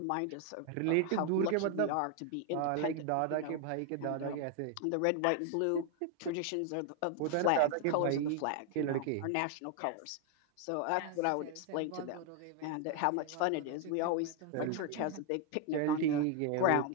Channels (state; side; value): different; both; correlation 0.01